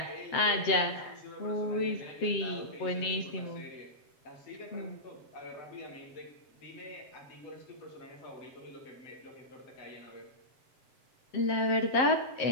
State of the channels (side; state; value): right; late; 7.6 ms